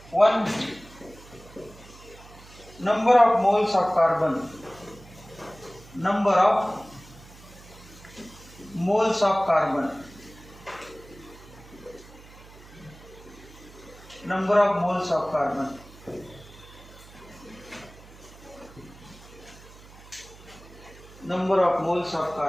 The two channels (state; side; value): noise; right; hum, 21 dB below the sound